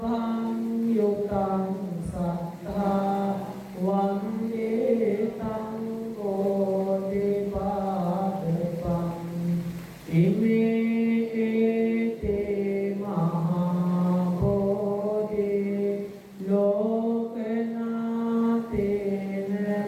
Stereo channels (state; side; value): identical; both; correlation 1.00